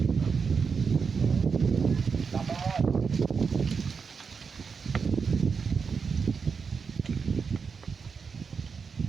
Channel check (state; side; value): quieter; left; 5.6 dB